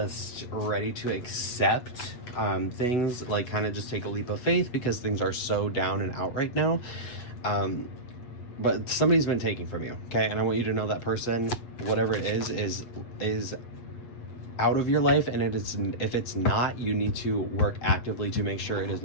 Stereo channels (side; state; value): right; late; 8.3 ms